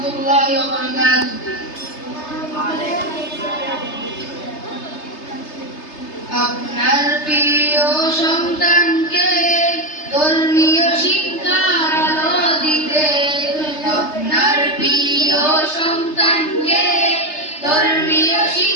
ওয়া বারাকাতুহু। আপনার প্রিয় সন্তানকে ধর্মীয় শিক্ষার আলো দিতে, আপনার প্রিয় সন্তানকে ধর্মীয়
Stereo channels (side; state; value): right; late; 3.3 ms